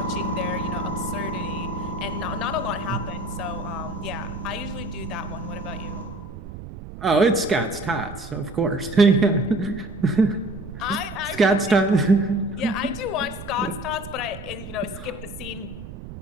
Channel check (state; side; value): noise; right; rumble, 12 dB below the sound